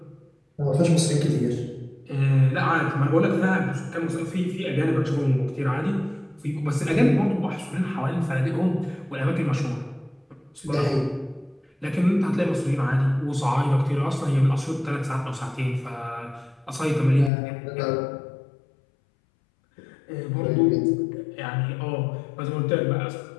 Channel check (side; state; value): right; drops out; at 17.3 s